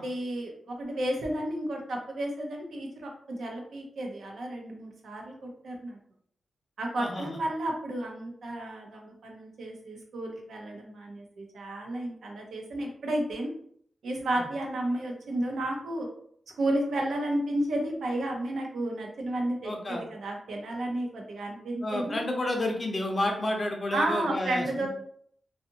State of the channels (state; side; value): normal; both; correlation 0.89